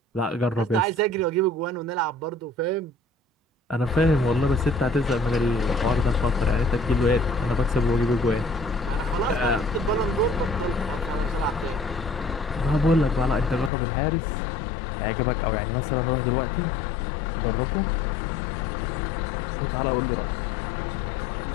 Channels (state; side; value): drops out; right; at 13.7 s